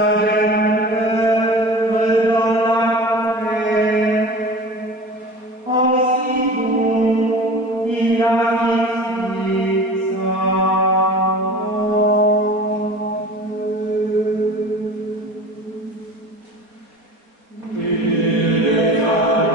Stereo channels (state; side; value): late; left; 4.1 ms